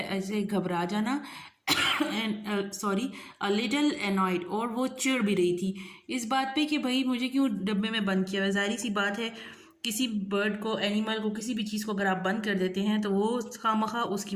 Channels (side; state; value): both; identical; correlation 1.00